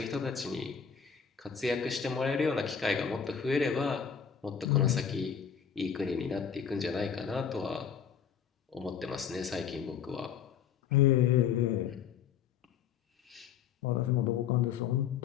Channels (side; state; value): right; quieter; 7.5 dB